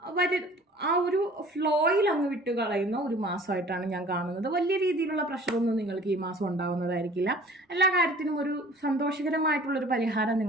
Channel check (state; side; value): normal; both; correlation 0.49